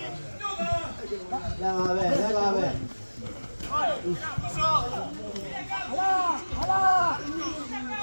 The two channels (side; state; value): both; inverted; correlation -1.00